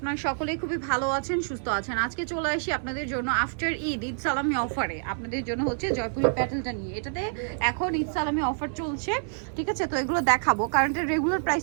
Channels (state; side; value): silent; left; digital silence